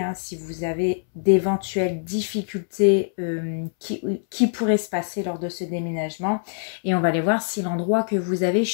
si vous avez d'éventuelles difficultés qui pourraient se passer lors de ce déménagement. Et on va aller voir si l'endroit que vous avez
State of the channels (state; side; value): silent; right; 63 dB below the other